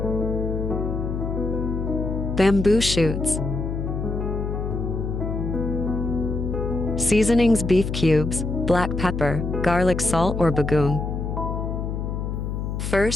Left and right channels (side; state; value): left; noise; hum, 3 dB below the sound